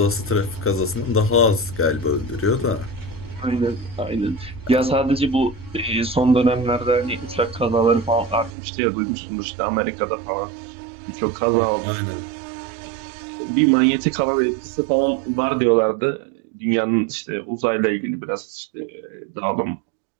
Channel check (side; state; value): left; drops out; at 8.6 s